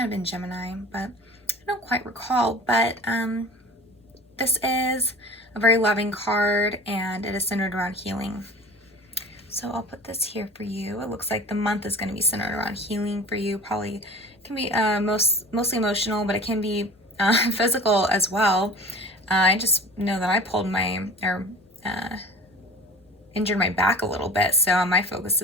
have been Gemini, but I don't quite recall. But this is a very loving card, and it is centered around healing. So I'll put this here for you. It looks like the month is going to be centered around healing for you. Probably can be mostly emotional, but it can be physical as well. I just know that I injured my back a little bit, so my focus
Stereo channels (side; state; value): both; normal; correlation 0.40